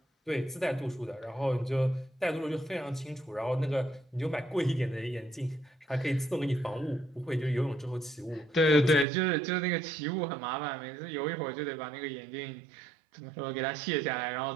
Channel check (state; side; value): drops out; left; at 9.1 s